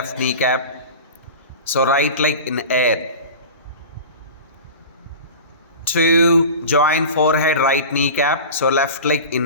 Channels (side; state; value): both; inverted; correlation -0.33